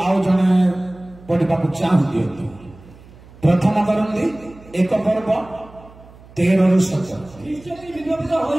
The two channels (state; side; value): noise; right; hum, 22 dB below the sound